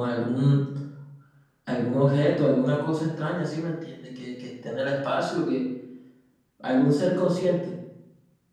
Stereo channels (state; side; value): identical; both; correlation 1.00